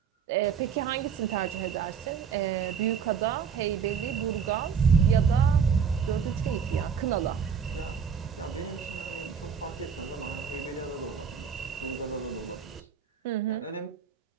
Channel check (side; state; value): left; quieter; 6.8 dB